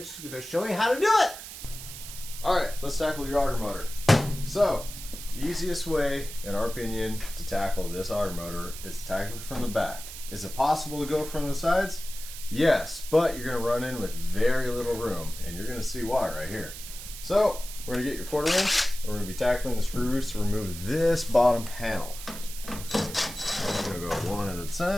is going to show you how to do it. All right, let's tackle your auger motor. So, the easiest way, in our opinion, to tackle this auger motor is to tackle it from the back. Is it possible to go from the sides? Yes, but you're going to run in with very little room, and you're going to see why right here. So, we're going to get your 1/4 inch, and we're going to be tackling the screws to remove this bottom panel. I'm going to go one at a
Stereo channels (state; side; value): noise; right; hiss, 11 dB below the sound